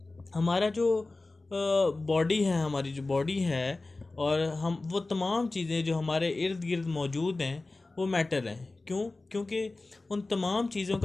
हमारा जो बॉडी है, हमारी जो बॉडी है और हम वो तमाम चीज़ें जो हमारे इर्द गिर्द मौजूद हैं वो मैटर हैं। क्यों? क्योंकि उन तमाम चीज़ों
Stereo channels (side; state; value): right; quieter; 3.2 dB